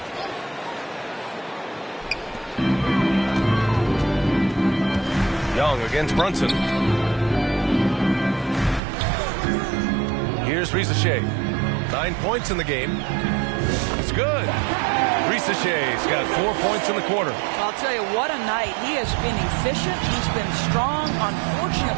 Young against Brunson. Here's Risacher. 9 points in the game. It's good. Risachet's got 4 points in the quarter. I'll tell you, what a night. He has been efficient. He's been strong.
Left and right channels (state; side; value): drops out; left; at 8.8 s